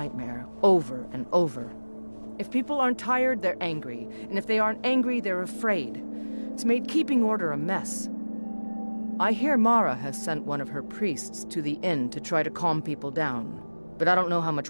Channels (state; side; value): inverted; both; correlation -1.00